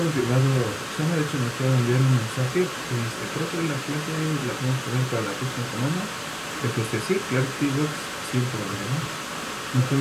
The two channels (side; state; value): both; identical; correlation 1.00